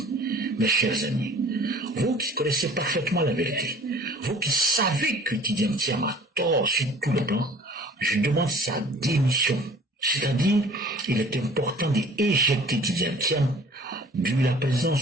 mes chers amis, vous qui connaissez parfaitement la vérité, vous qui savez que Tidjane Thiam a tort sur tous les plans, je demande sa démission. C'est-à-dire, il est important d'éjecter Tidjane Thiam de la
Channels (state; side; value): normal; both; correlation 0.49